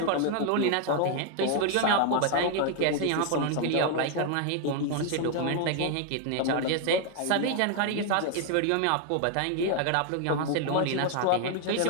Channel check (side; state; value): both; different; correlation 0.01